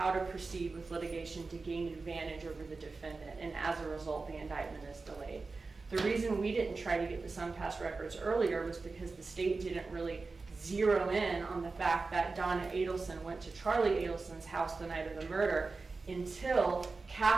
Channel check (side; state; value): left; quieter; 4.0 dB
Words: to proceed with litigation to gain advantage over the defendant, and as a result, the indictment is delayed. The reason we didn't try to get the SunPass records earlier was because the state didn't really zero in on the fact that Donna Adelson went to Charlie Adelson's house the night of the murder until